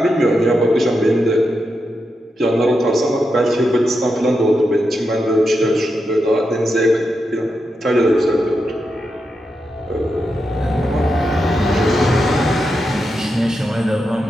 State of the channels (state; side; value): normal; both; correlation 0.86